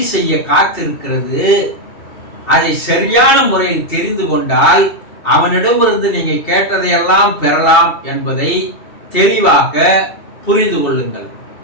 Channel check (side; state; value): right; late; 2.7 ms